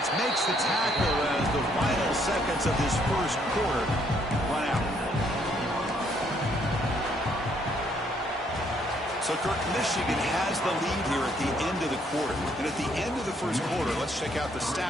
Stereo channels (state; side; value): normal; both; correlation 0.69